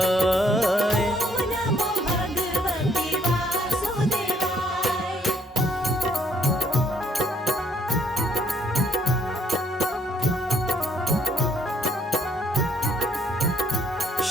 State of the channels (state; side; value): normal; both; correlation 0.68